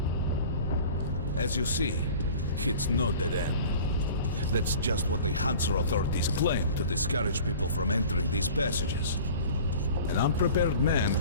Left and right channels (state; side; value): inverted; both; correlation -0.43